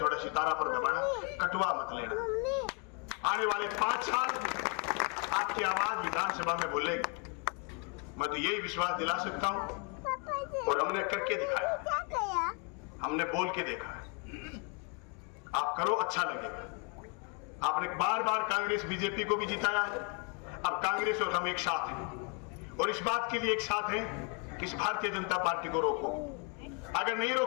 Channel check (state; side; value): quieter; right; 35.9 dB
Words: थोड़ा सितारा पर दबाना, कटवा मत लेना। आने वाले 5 साल आपकी आवाज विधानसभा में बोलेगी, मैं तो यही विश्वास दिला सकता हूं। और हमने करके दिखाया, हमने बोल के देखा है। आप करो, अच्छा लगेगा। आपने बार बार कांग्रेस बीजेपी को भी जिताया है, अब कांग्रेस और हम एक साथ हैं और इस बात के लिए एक साथ हैं कि इस भारतीय जनता पार्टी को रोको। अगर नहीं